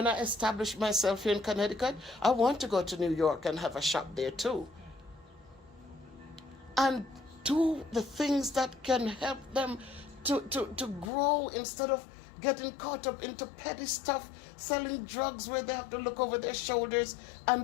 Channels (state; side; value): drops out; right; at 11.1 s